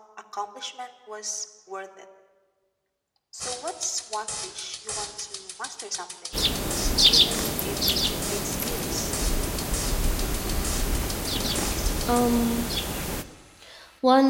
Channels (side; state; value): both; identical; correlation 1.00